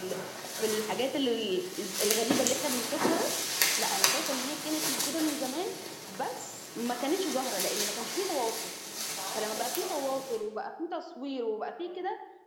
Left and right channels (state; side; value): identical; both; correlation 1.00